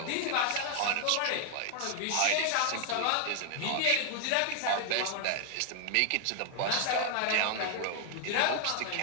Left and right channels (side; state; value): both; different; correlation 0.00